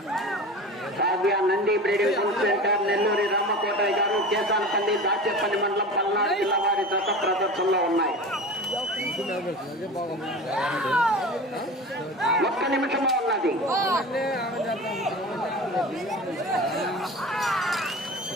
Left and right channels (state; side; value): normal; both; correlation 0.33